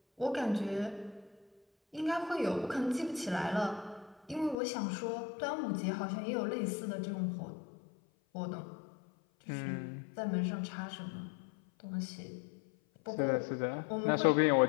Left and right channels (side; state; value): right; drops out; at 4.5 s